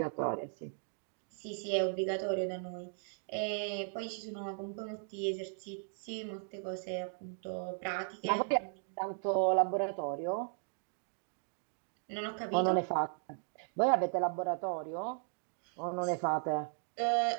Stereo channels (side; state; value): left; silent; digital silence